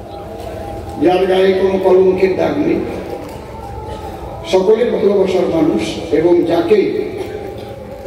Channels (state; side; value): identical; both; correlation 1.00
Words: যার গায়ে কোনো কলঙ্কের দাগ নেই, সকলের ভালোবাসার মানুষ, এবং যাকে